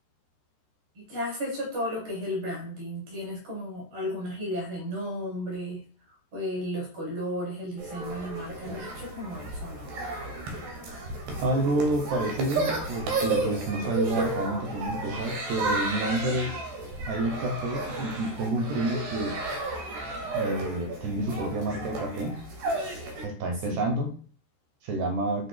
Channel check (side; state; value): left; late; 13 ms